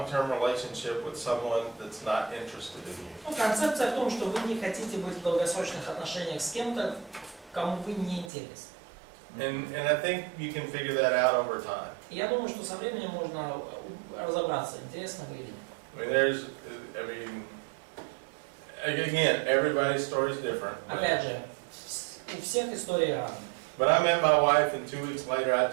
relationship with someone that's not interested in you. Ну, концепция в том, что вы не хотите быть в долгосрочных отношениях с кем-то, кому вы не интересны. And I think you can figure that out over time. Я думаю, что со временем можно разобраться, интересно вы или нет. I mean, again, everybody's story is different. Опять же, у всех истории разные. But I met my wife, and 2 weeks later, I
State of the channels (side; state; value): left; drops out; at 8.3 s